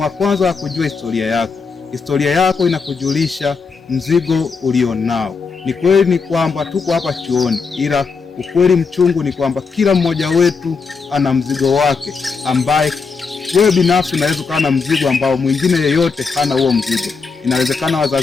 wa kwanza wa kujua historia yako. Historia yako inakujulisha mzigo ulionao. Ni kweli ni kwamba tuko hapa chuoni, ila ukweli mchungu ni kwamba kila mmoja wetu ana mzigo wake, ambaye wewe binafsi unaweza kuwa na mzigo ambao mwingine yeyote hana huo mzigo. Inawezekana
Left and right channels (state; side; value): quieter; right; 4.9 dB